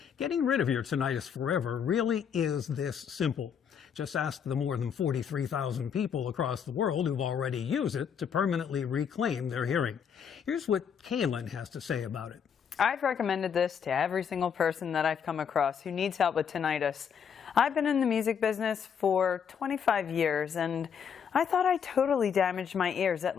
Getting rid of your tinnitus forever really is this simple. Just ask the more than 43,000 people across the world who've already used it to permanently reclaim their hearing. Here's what Kaylin has to say about it. I've recommended this to every single person that I've come across who needs help with tinnitus. I've been in the music business for 25 years, and I thought I totally damaged my ears at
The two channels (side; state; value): right; quieter; 7.4 dB